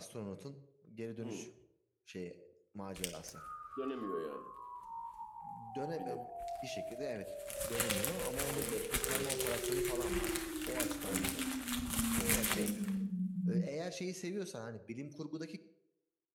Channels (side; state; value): both; identical; correlation 1.00